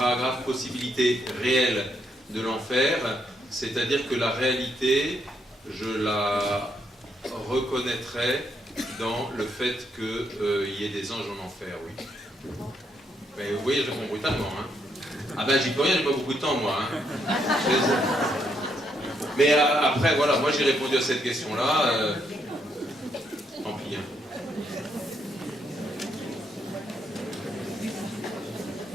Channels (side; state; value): both; normal; correlation 0.76